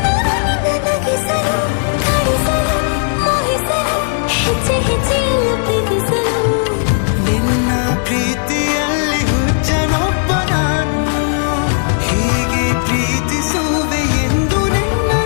ಹೆಜ್ಜೆ ಹೆಜ್ಜೆಯಲ್ಲೂ ಪ್ರೀತಿಸಲು, ನಿನ್ನ ಪ್ರೀತಿಯಲ್ಲಿ ಹುಚ್ಚನೊಬ್ಬ ನಾನು. ಹೀಗೆ ಪ್ರೀತಿಸುವೆ ಎಂದು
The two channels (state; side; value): silent; right; digital silence